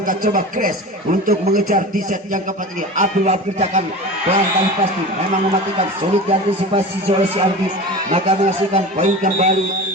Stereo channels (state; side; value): normal; both; correlation 0.32